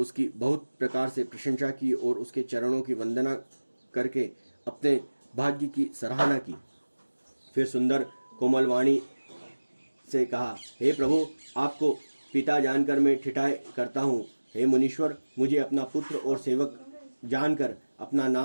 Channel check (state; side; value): inverted; both; correlation -1.00